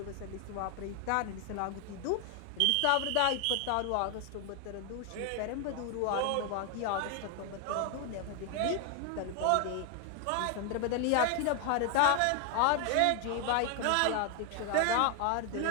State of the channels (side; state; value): both; different; correlation 0.00